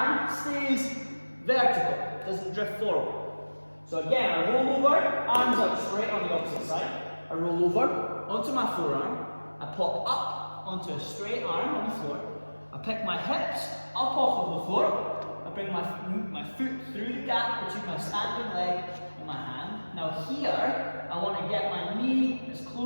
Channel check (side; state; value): both; inverted; correlation -1.00